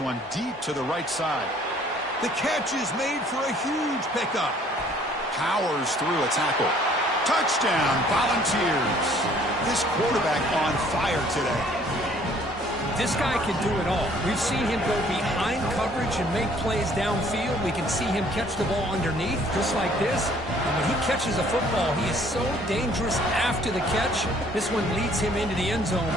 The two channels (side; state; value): both; normal; correlation 0.58